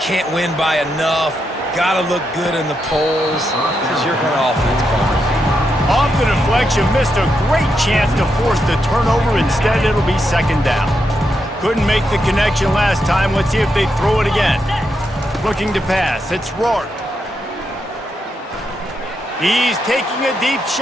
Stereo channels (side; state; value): both; normal; correlation 0.83